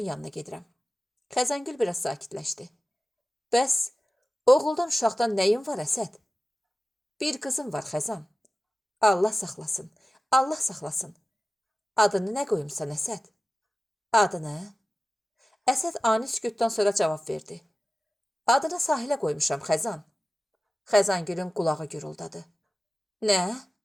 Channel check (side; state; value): both; normal; correlation 0.95